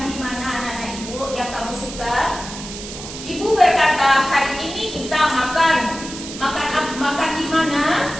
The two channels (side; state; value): right; noise; hiss, 11 dB below the sound